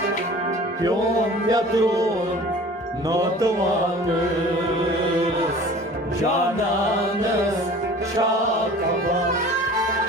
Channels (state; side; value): normal; both; correlation 0.44